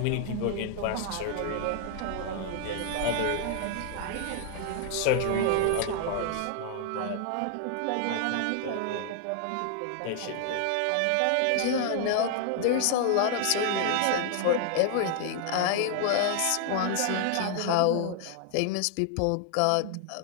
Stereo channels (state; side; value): different; both; correlation 0.00